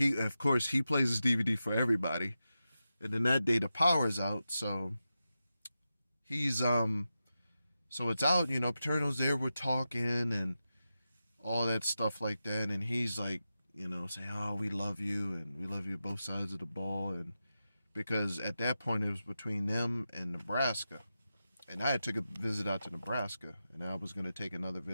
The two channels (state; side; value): inverted; both; correlation -0.91